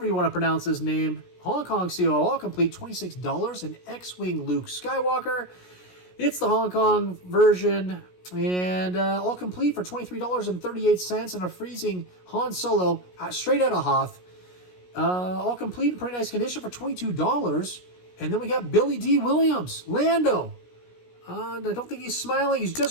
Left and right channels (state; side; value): late; right; 17 ms